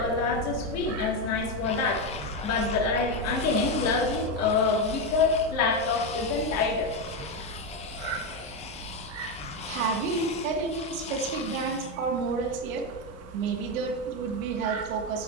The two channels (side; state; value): both; normal; correlation 0.10